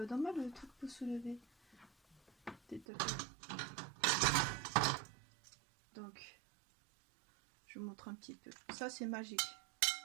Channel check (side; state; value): left; drops out; at 2.9 s